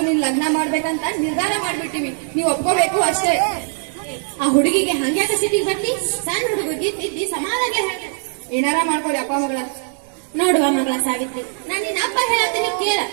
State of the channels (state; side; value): silent; left; 58 dB below the other